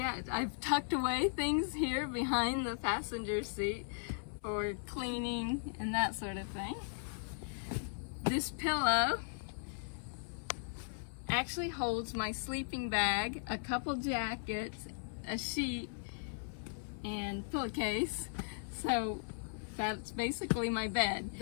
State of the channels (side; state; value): right; silent; 53 dB below the other